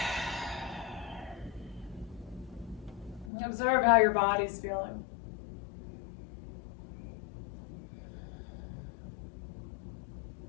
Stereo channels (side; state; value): right; drops out; at 3.3 s